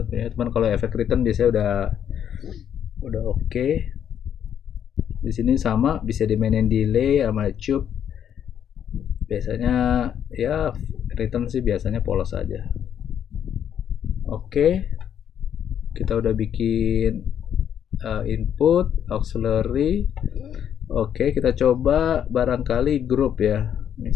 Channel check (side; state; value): right; quieter; 9.2 dB